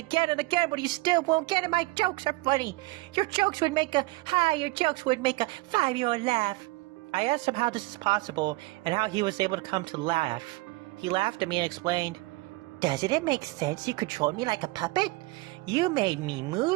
and again, but you still won't get it. My jokes are funny. Your jokes would make a 5-year-old laugh." I asked him how this is possible and how he was able to come to laugh. He laughed at me and explained, "Doesn't it make sense you controlled me like a puppet? You made me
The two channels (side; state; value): left; quieter; 22.6 dB